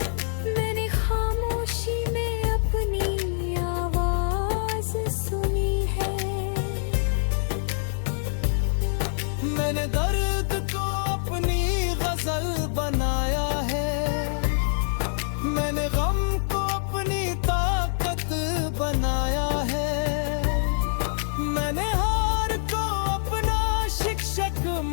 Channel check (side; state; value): right; silent; digital silence